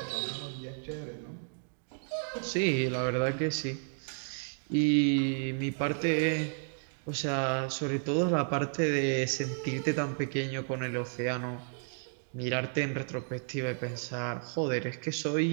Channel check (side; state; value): left; silent; digital silence